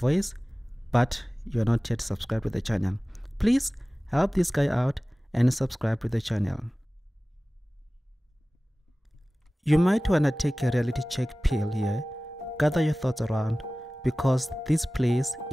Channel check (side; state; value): both; normal; correlation 0.97